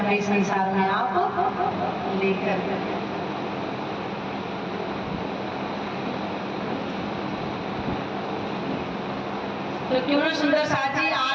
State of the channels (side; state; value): both; identical; correlation 1.00